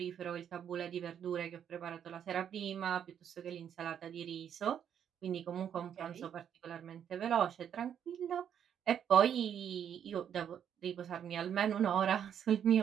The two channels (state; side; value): quieter; left; 8.9 dB